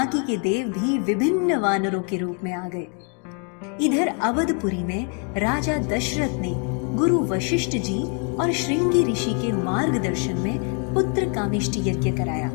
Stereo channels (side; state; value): right; quieter; 37.9 dB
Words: के देव भी विभिन्न वानरों के रूप में आ गए। इधर अवधपुरी में राजा दशरथ ने गुरु वशिष्ठ जी और श्रृंगी ऋषि के मार्गदर्शन में पुत्र कामिष्टि यज्ञ कराया,